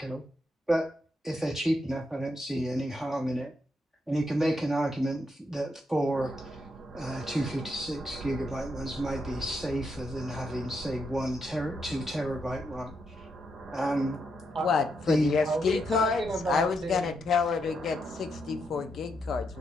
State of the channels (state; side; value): normal; both; correlation 0.80